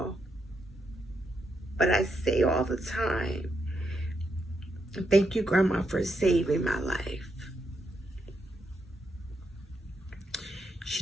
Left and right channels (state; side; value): normal; both; correlation 0.81